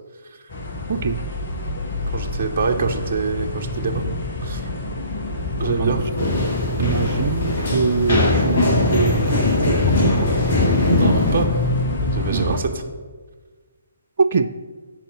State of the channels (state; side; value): inverted; both; correlation -0.46